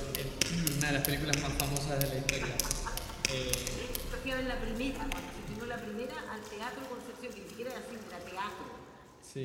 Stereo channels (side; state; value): both; identical; correlation 1.00